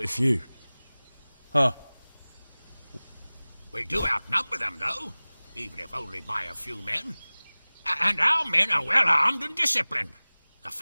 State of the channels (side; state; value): both; inverted; correlation -1.00